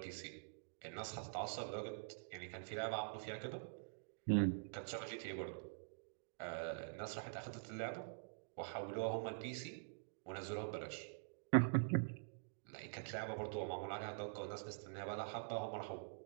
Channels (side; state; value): left; silent; digital silence